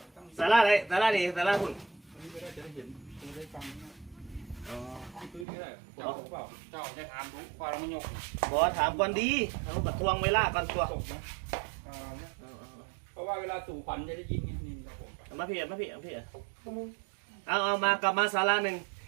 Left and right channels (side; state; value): left; drops out; at 5.5 s